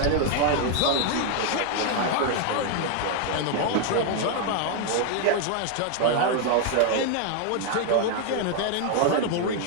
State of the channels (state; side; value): different; both; correlation 0.00